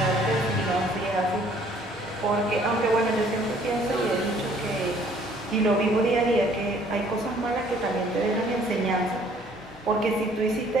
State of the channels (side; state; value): both; normal; correlation 0.59